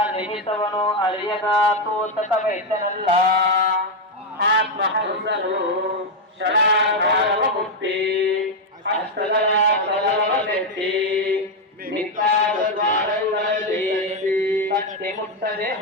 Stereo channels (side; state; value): both; normal; correlation 0.04